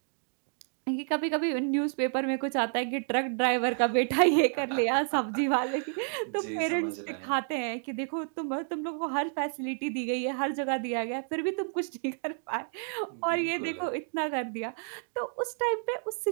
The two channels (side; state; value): left; silent; 58 dB below the other